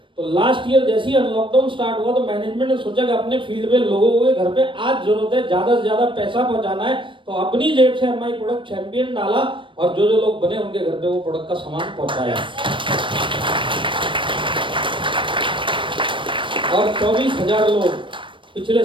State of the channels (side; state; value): left; late; 0.24 ms